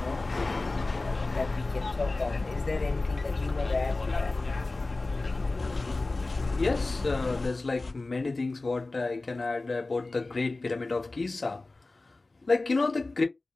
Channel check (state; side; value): quieter; right; 3.2 dB